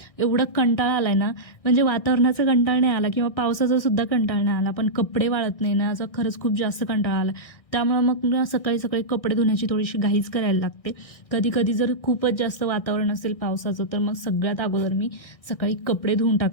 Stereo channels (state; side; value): late; right; 1.6 ms